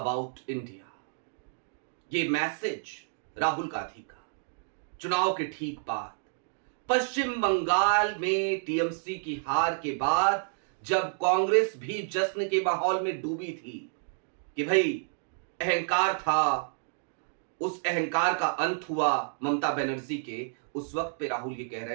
India. ये मैसेज राहुल गांधी का चुनाव के ठीक बाद पश्चिम बंगाल में टीएमसी की हार के बाद, जब कांग्रेस भी जश्न के माहौल में डूबी थी कि भाई अहंकार था, उस अहंकार का अंत हुआ ममता बनर्जी के, उस वक्त पे राहुल ये कह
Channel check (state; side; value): silent; left; digital silence